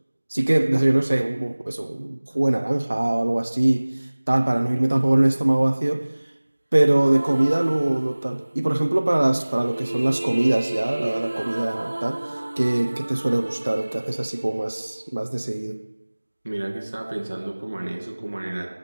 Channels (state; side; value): inverted; both; correlation -1.00